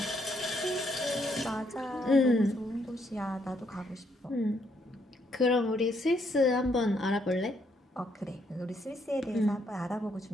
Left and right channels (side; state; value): both; normal; correlation 0.73